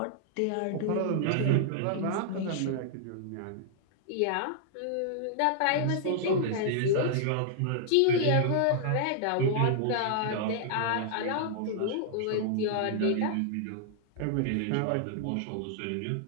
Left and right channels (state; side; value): different; both; correlation -0.01